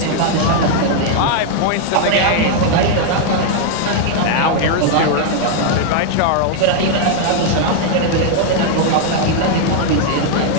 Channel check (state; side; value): different; both; correlation 0.00